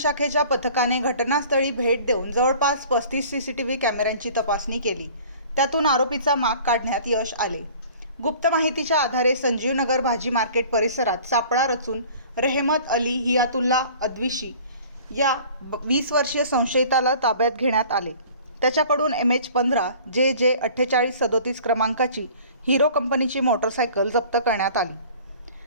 पथकाने घटनास्थळी भेट देऊन जवळपास 35 CCTV कॅमेऱ्यांची तपासणी केली। त्यातून आरोपीचा माग काढण्यात यश आले। गुप्त माहितीच्या आधारे संजीव नगर भाजी मार्केट परिसरात सापळा रचून रेहमत अली हियातुल्ला अद्विशी या 20 वर्षीय संशयिताला ताब्यात घेण्यात आले। त्याच्याकडून MH15 JJ 4837 क्रमांकाची हिरो कंपनीची मोटरसायकल जप्त करण्यात आली।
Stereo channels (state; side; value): inverted; both; correlation -0.47